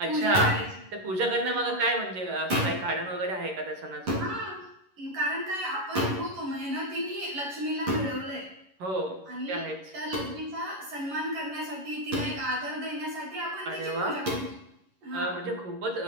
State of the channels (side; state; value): left; late; 11 ms